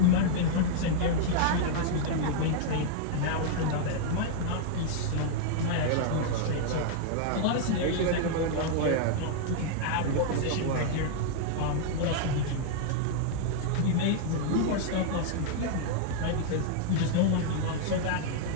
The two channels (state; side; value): different; both; correlation -0.01